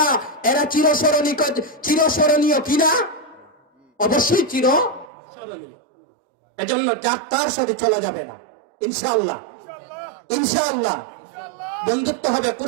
এরা চিরস্মরণীয় কিনা? অবশ্যই চিরস্মরণীয়। এজন্য যার তার সাথে চলা যাবে না। ইনশাআল্লাহ, ইনশাআল্লাহ বন্ধুত্ব হবে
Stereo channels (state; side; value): drops out; left; at 5.1 s